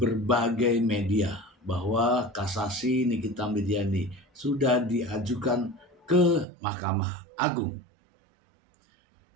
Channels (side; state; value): left; drops out; at 6.5 s